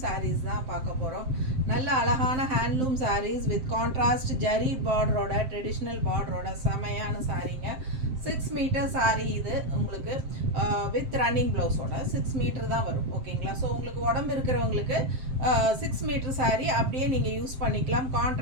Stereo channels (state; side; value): late; left; 7.7 ms